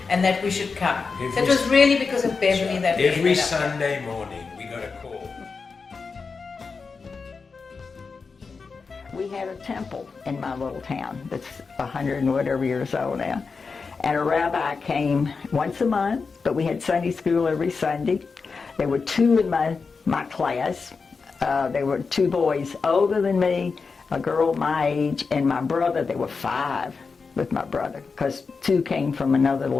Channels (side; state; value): right; quieter; 4.8 dB